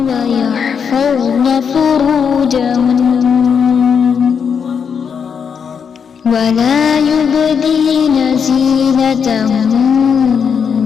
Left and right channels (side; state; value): right; quieter; 6.8 dB